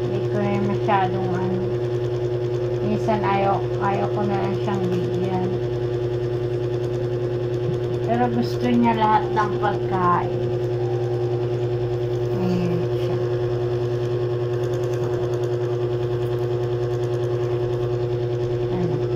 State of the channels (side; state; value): both; identical; correlation 1.00